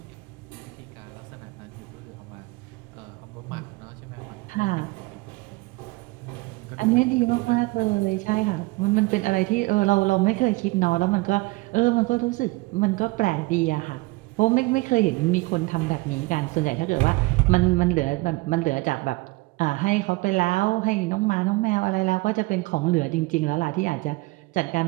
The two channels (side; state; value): left; quieter; 23.1 dB